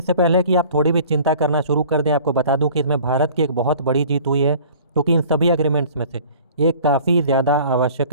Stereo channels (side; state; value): both; inverted; correlation -0.48